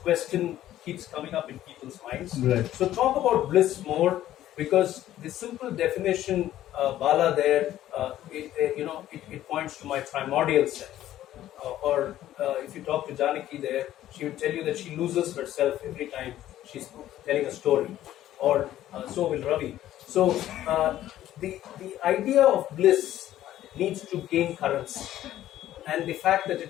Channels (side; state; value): right; quieter; 13.1 dB